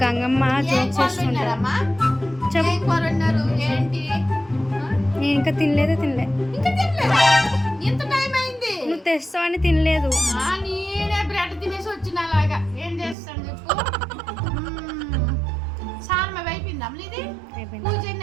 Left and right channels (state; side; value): drops out; left; at 13.2 s